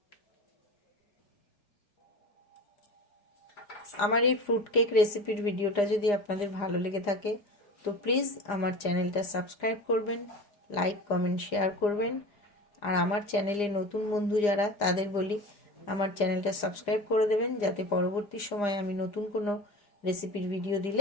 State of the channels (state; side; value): late; right; 4.9 ms